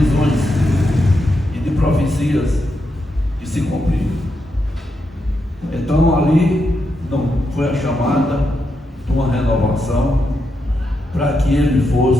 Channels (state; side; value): normal; both; correlation 0.84